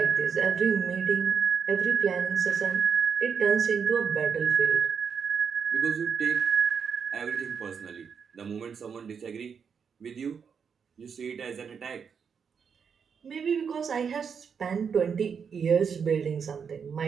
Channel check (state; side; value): quieter; left; 6.6 dB